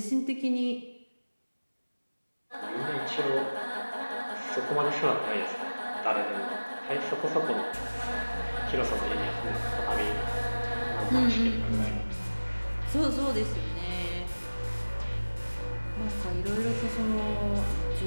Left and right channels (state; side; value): inverted; both; correlation -1.00